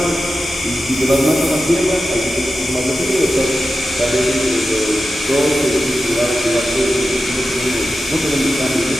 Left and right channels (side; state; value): both; normal; correlation 0.92